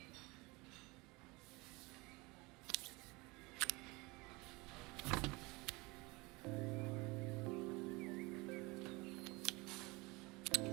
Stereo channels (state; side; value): quieter; left; 24.7 dB